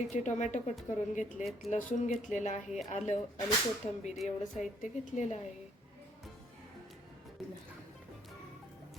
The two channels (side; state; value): both; normal; correlation 0.66